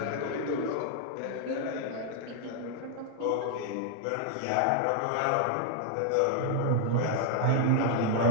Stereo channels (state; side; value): different; both; correlation 0.00